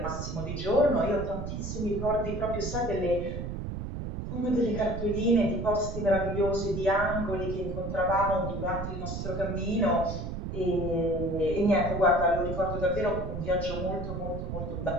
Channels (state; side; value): noise; right; rumble, 5 dB below the sound